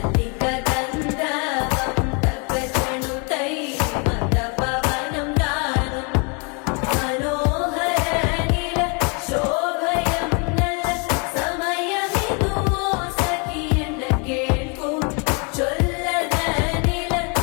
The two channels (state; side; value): quieter; right; 34.4 dB